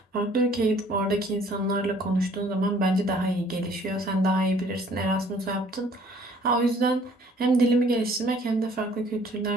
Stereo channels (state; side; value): normal; both; correlation 0.57